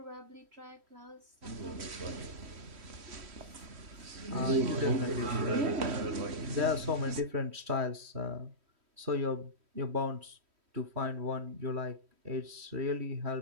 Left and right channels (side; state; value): left; late; 3.1 ms